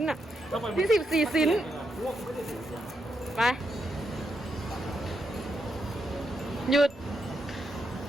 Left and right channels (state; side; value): normal; both; correlation 0.82